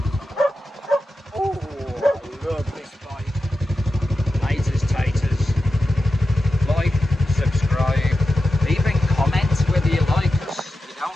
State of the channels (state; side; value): normal; both; correlation 0.91